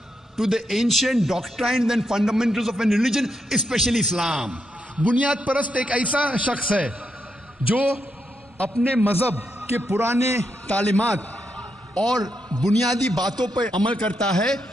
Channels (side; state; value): both; normal; correlation 0.82